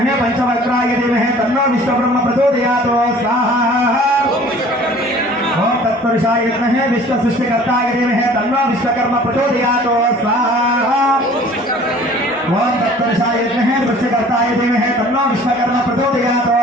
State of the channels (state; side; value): normal; both; correlation 0.49